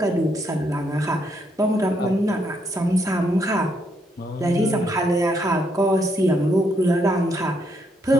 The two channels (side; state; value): both; normal; correlation 0.75